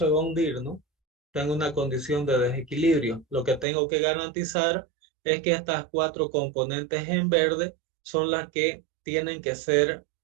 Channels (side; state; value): left; drops out; at 3.7 s